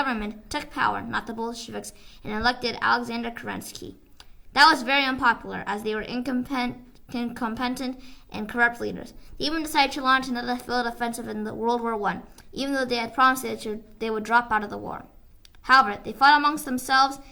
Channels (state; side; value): identical; both; correlation 1.00